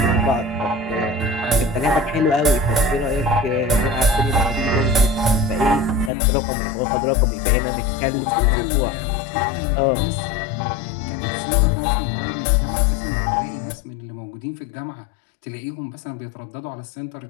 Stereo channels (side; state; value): right; drops out; at 6.1 s